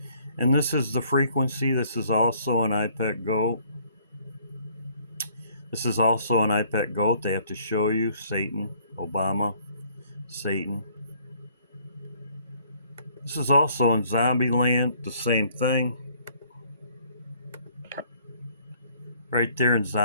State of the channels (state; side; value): inverted; both; correlation -0.62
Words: And this is the frequency. This is also an iPad goat. This is also an iPad goat. They have to show you Satan, Obama, Satan. This is also in Zombieland, the same thing. Right there in